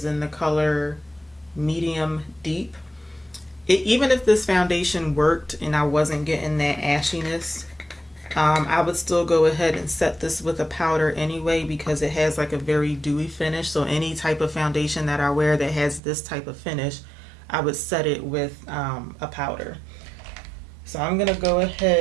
in the color medium deep. Even if this foundation worked and I wasn't getting that ashiness, I would still go ahead and set this with a powder anyway, because it has like a very dewy finish. So any type of foundation that I wear that has this type of finish, I would set it with a powder. So I'm gonna go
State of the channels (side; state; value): left; drops out; at 16.0 s